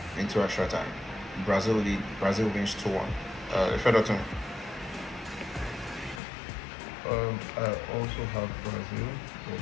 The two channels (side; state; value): right; drops out; at 6.2 s